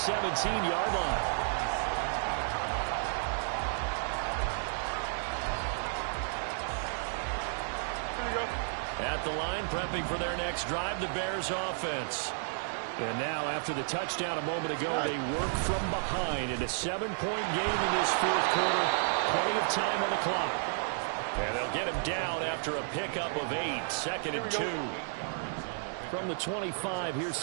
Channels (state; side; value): silent; left; 56 dB below the other